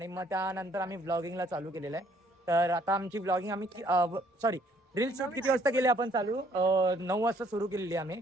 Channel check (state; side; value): normal; both; correlation 0.64